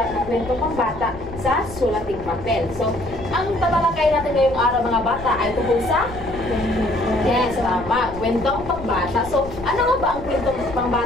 ng kwentong pangbata sa sulating papel. So, ang tatalakay natin ngayong araw, mga bata, ay tungkol sa yes, tama, kwentong pangbata. So, ano nga ba ang kwentong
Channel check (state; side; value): noise; left; rumble, 14 dB below the sound